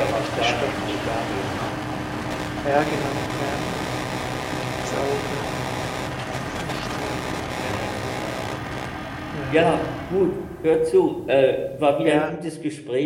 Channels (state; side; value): identical; both; correlation 1.00